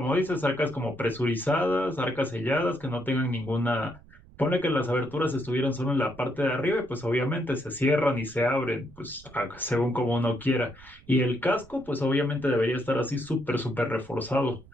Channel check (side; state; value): right; noise; rumble, 23 dB below the sound